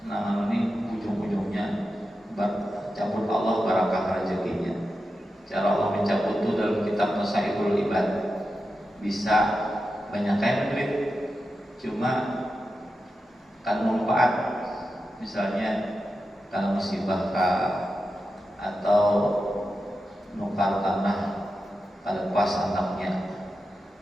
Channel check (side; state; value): both; normal; correlation 0.90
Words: nah ini ujung-ujungnya cabut Allah barakah rezekinya. Cara Allah mencabut itu dalam kitab Nasaihul Ibad. Bisa banyak kayak duit, cuma kan manfaat. Misalnya kalau musibah atau nukar tanah pada pas anaknya,